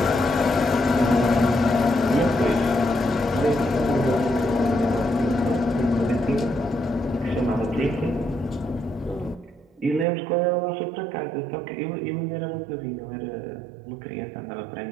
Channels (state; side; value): drops out; left; at 10.1 s